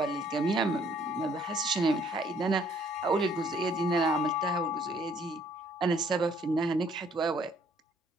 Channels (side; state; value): both; normal; correlation 0.63